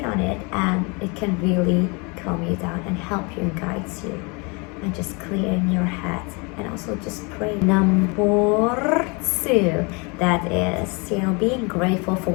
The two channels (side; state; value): right; quieter; 30.5 dB